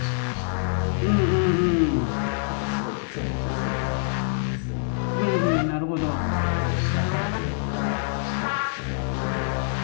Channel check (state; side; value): silent; right; digital silence